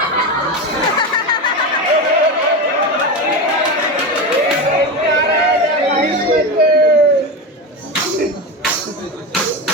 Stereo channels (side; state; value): both; normal; correlation 0.20